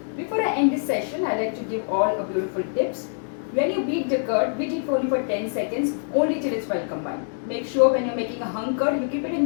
Before I end this session, I like to give all a beautiful tips. When you beat the curd, beat it only for 10 seconds, only till it's well combined. Make sure when you're making a hung curd, you keep it in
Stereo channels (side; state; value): right; silent; digital silence